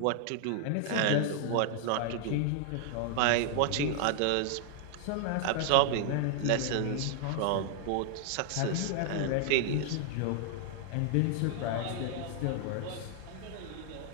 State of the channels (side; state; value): both; different; correlation 0.00